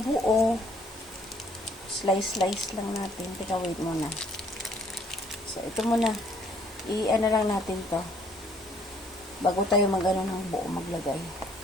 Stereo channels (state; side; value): normal; both; correlation 0.62